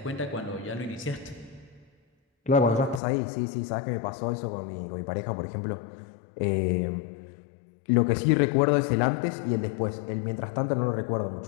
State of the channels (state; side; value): drops out; right; at 3.0 s